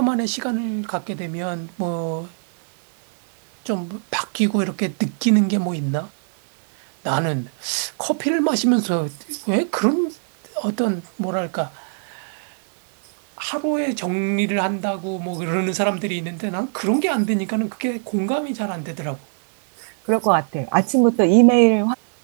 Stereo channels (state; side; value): silent; left; 64 dB below the other